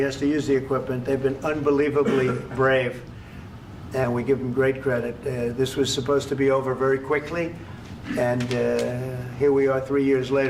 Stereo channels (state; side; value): identical; both; correlation 1.00